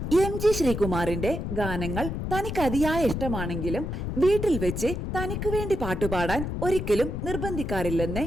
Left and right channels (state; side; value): noise; left; rumble, 4 dB below the sound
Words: MG ശ്രീകുമാറിന്റെ ഗാനങ്ങൾ തനിക്ക് അതിയായ ഇഷ്ടമാണെങ്കിലും വീട്ടിൽ വെച്ച് തനിക്ക് വേണ്ടി പാട്ടുപാടാൻ ഒരിക്കലും നിർബന്ധിക്കാറില്ലെന്ന്